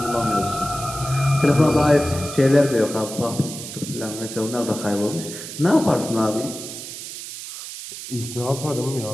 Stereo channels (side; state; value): right; noise; hiss, 10 dB below the sound